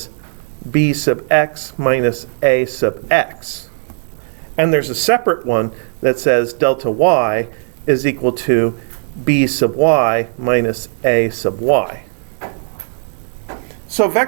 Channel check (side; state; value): left; silent; 68 dB below the other